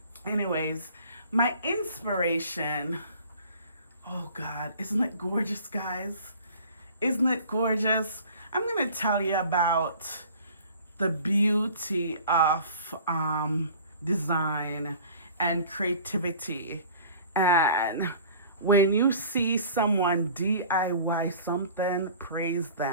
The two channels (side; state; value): both; inverted; correlation -0.46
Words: my inspiration, oh God, isn't it gorgeous, guys? Isn't it gorgeous? I'm going to tell you about the beauty of design and creativity. And when you see someone DIY something, praise